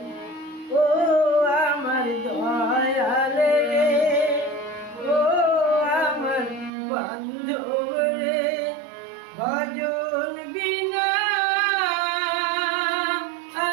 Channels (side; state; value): left; drops out; at 6.7 s